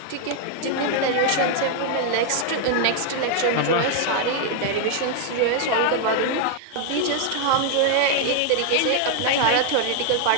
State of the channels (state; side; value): different; both; correlation 0.00